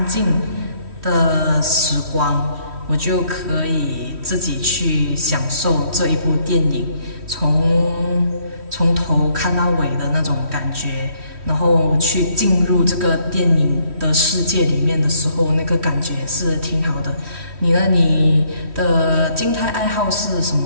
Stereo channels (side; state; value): left; late; 3.1 ms